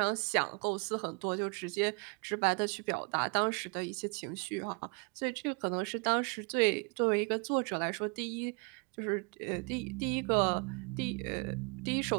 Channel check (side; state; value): left; quieter; 33.8 dB